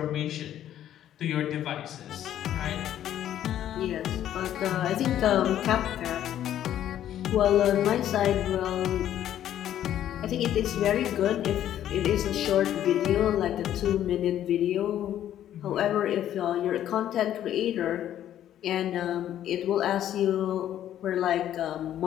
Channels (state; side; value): quieter; right; 11.4 dB